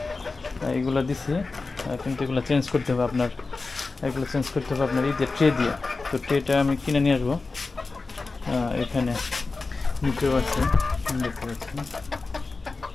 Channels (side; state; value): right; quieter; 3.8 dB